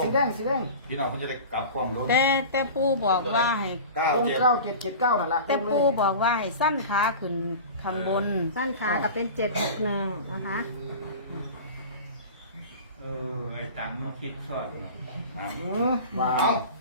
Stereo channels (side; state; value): both; inverted; correlation -0.35